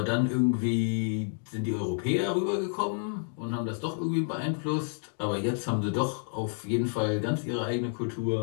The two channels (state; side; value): silent; right; 57 dB below the other